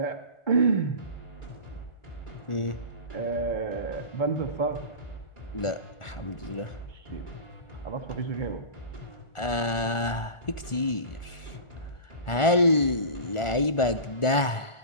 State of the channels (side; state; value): right; late; 1.4 ms